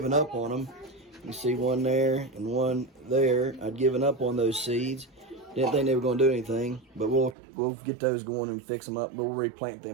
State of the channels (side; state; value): left; drops out; at 7.4 s